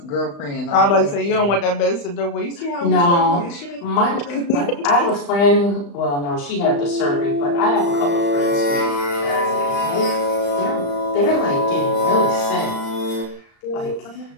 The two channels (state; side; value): late; right; 35 ms